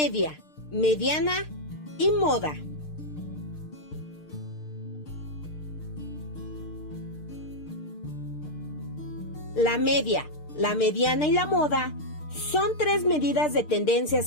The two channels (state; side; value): late; right; 6.6 ms